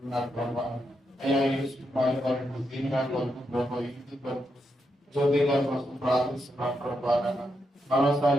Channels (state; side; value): normal; both; correlation 0.82